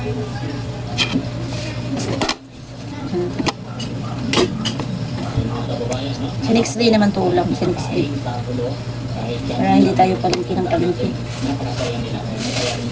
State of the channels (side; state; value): both; identical; correlation 1.00